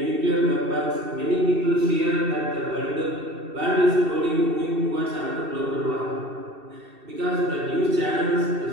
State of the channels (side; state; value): left; late; 2.7 ms